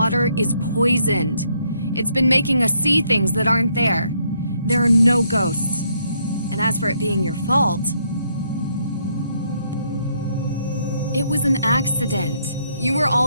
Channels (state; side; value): inverted; both; correlation -0.72